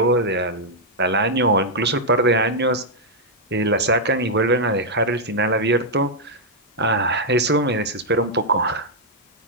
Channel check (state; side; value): normal; both; correlation -0.05